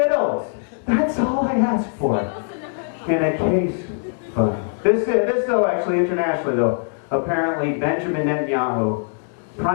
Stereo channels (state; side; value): silent; right; 62 dB below the other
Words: That's all I ask for. In a case of this though, actually internationally though, apparently Benjamin Netanyahu,